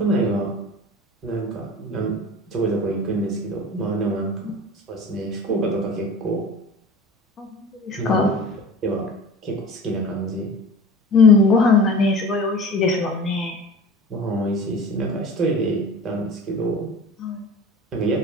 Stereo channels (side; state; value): both; normal; correlation 0.38